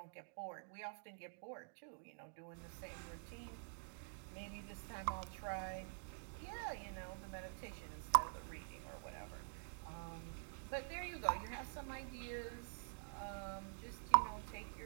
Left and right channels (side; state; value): left; silent; digital silence